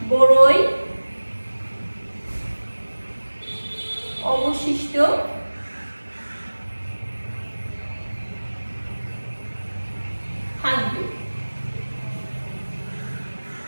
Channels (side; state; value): both; inverted; correlation -1.00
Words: বড়ই অবশিষ্ট থাকবে।